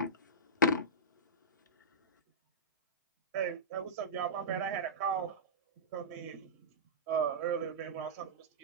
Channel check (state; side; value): normal; both; correlation -0.15